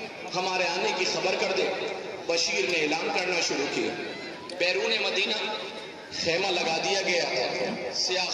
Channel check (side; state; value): both; identical; correlation 1.00